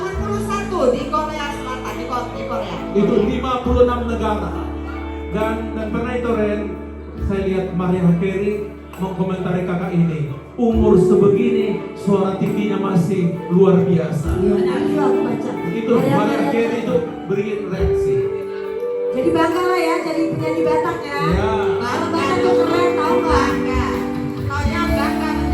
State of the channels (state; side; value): identical; both; correlation 1.00